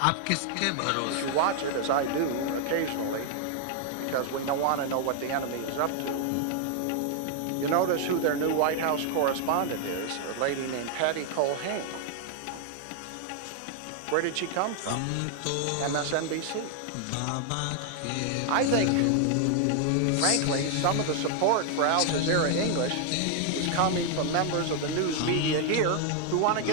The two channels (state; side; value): different; both; correlation 0.00